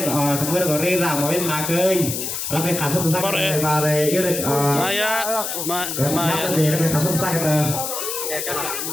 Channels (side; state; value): left; noise; hiss, 4 dB below the sound